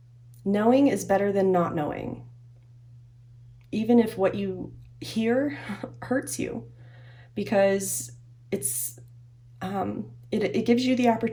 Knowing is better than not knowing, even if what you hear hurts you, because it's it gives you the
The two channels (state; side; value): identical; both; correlation 1.00